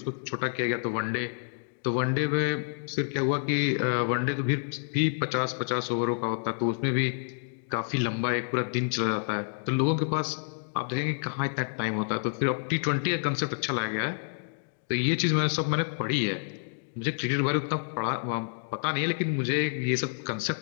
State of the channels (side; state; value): right; silent; digital silence